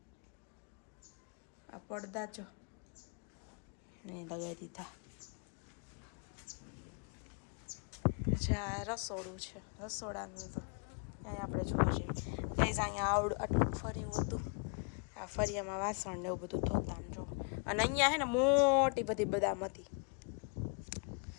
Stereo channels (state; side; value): quieter; right; 37.0 dB